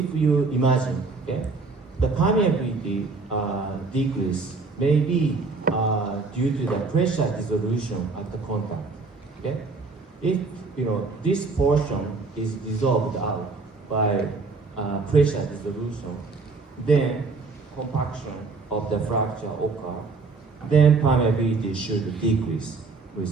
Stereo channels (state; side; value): quieter; left; 4.1 dB